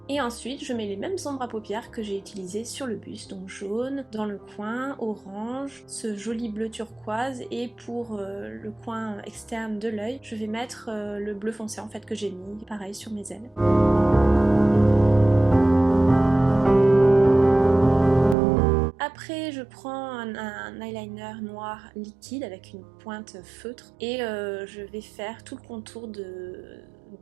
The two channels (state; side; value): drops out; left; at 18.4 s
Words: Et ensuite, je mets les mêmes ombres à paupières que j'ai utilisées sur le buste, donc jaune, dans le coin, orange, ce joli bleu turquoise, et pour le coin externe de l'œil, je vais mettre le bleu foncé en fait que j'ai mis, pareil, sur mes ailes. Après, je prends un eyeliner noir liquide avec une pointe feutre et je vais faire tout le contour de